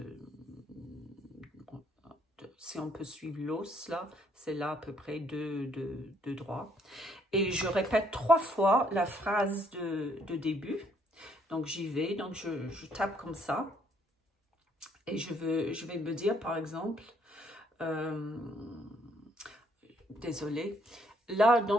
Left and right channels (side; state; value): both; normal; correlation 0.68